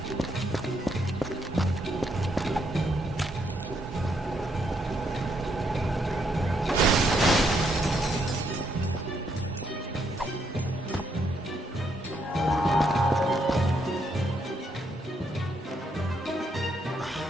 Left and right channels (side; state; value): both; normal; correlation 0.75